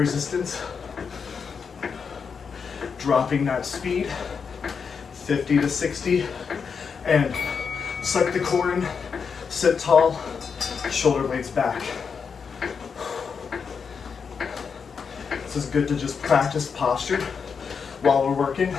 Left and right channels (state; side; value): quieter; right; 6.0 dB